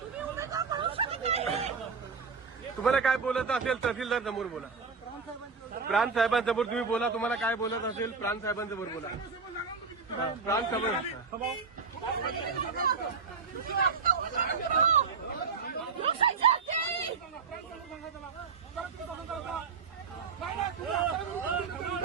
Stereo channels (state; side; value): quieter; left; 5.2 dB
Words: तुम्हाला काय बोलत असेल तहसीलदार समोर बोला. प्रांत साहेबांसमोर तुम्ही बोला. तुम्हाला काय बोलत असेल प्रांत साहेबांसमोर बोला. प्रांत समोर